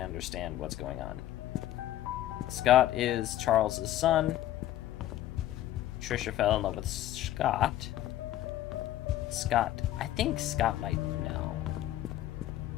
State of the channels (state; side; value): quieter; right; 13.6 dB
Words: what's going on. Scott is Charles's son. Trisha fell in love with Scott. I think Scott might know.